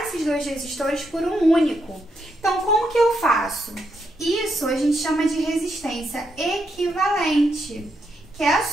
dois resistores por um único. Então, como que eu faço? Isso a gente chama de resistência equivalente, que é a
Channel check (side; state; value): both; normal; correlation 0.80